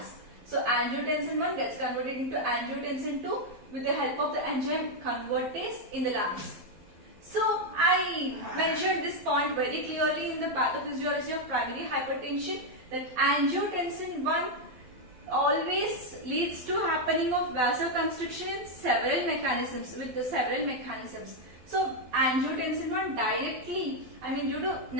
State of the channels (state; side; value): late; left; 12 ms